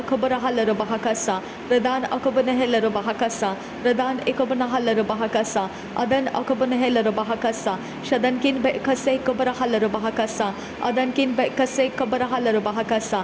halara baha kasa. Redan akabana halara baha kasa. Redan ikabana halara baha kasa. Adan akabana halara baha kasa. Shadankin be kase kabara halara baha kasa. Adankin be kase kabara halara baha kasa.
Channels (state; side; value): identical; both; correlation 1.00